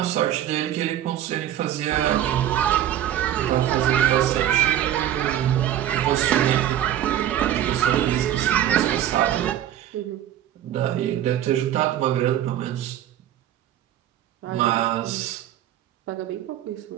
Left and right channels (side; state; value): left; quieter; 11.5 dB